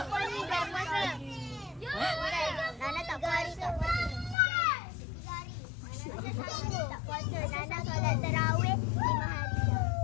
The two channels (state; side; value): drops out; right; at 4.4 s